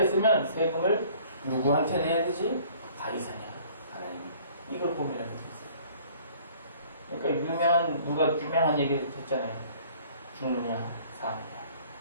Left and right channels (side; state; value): both; inverted; correlation -0.54